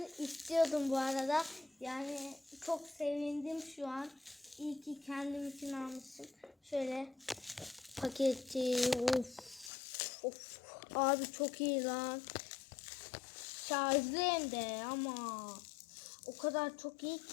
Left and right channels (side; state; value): right; drops out; at 9.7 s